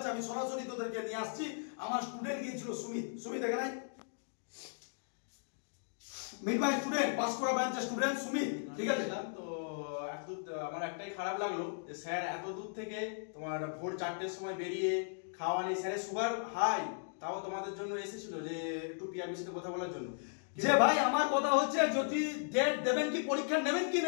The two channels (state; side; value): silent; right; digital silence